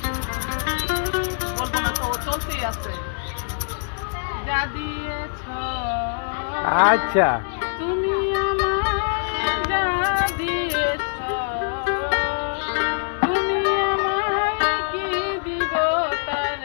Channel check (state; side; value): silent; right; digital silence